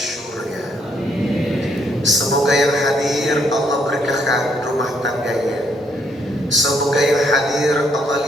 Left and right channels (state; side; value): normal; both; correlation 0.71